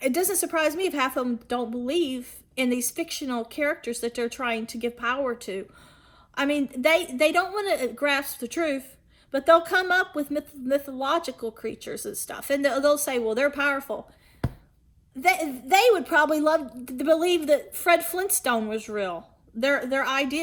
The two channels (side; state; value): both; identical; correlation 1.00